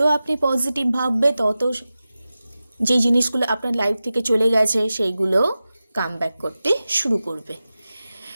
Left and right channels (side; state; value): both; inverted; correlation -0.94